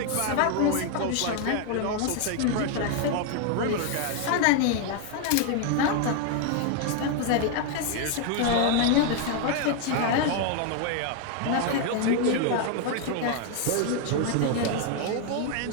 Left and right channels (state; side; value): different; both; correlation 0.01